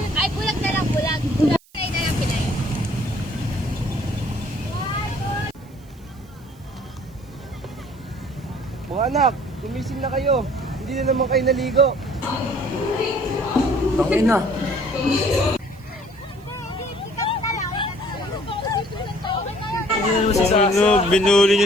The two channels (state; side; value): noise; right; hiss, 29 dB below the sound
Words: Ay, bulag na lang, bulag. Pinay na lang, pinay. Mga anak, gumising na kayo. Hindi na naman kayo naligo. Tangin na. Ano, binuli